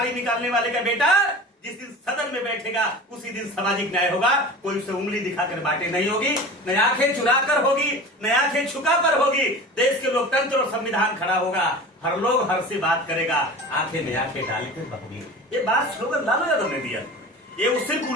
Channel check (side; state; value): both; normal; correlation 0.36